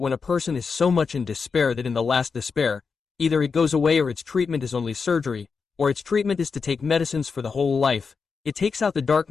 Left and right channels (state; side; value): quieter; right; 5.3 dB